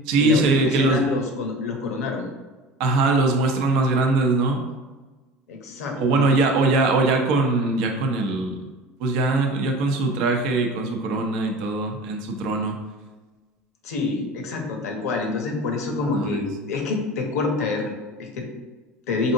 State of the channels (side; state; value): both; normal; correlation 0.37